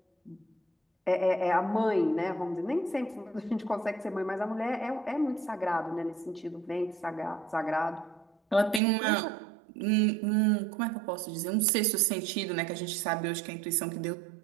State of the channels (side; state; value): left; drops out; at 8.8 s